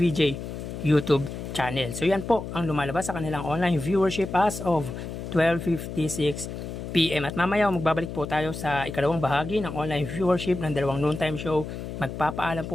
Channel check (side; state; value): left; noise; hum, 8 dB below the sound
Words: YouTube channel. So yan po ang lumalabas sa kanilang online viewership as of 12:56 PM. At mamaya magbabalik po tayo sa ikalawang bahagi ng online viewership ng dalawang noontime show. Magpapaalam